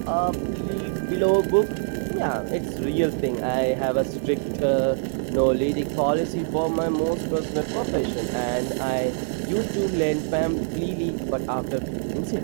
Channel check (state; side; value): silent; left; digital silence